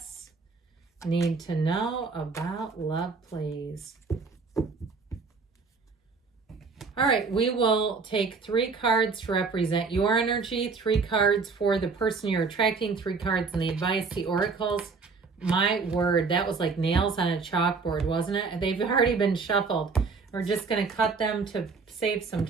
need to know about love, please? All right, we will take 3 cards to represent your energy, 3 cards for the person you're attracting, 3 cards in the advice, the oracles. My word, that was like nails on a chalkboard, wasn't it? They've already been shuffled. We're just going to cut them to save some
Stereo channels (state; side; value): quieter; left; 4.7 dB